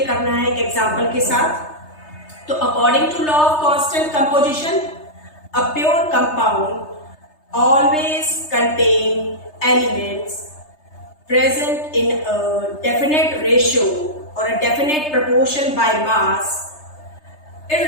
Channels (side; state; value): right; late; 3.3 ms